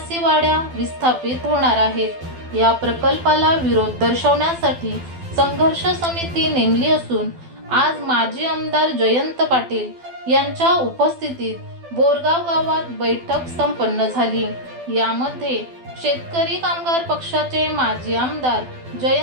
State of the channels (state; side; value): late; left; 12 ms